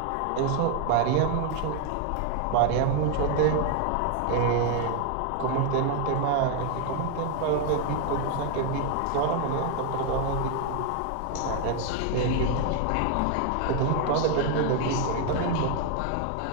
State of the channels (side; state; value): both; different; correlation 0.00